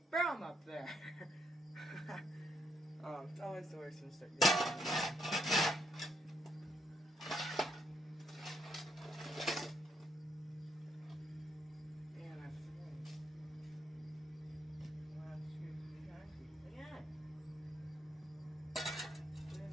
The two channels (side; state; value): both; normal; correlation 0.75